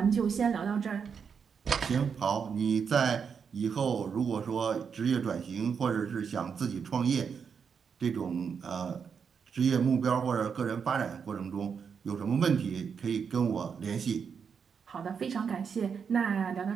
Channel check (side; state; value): left; quieter; 6.5 dB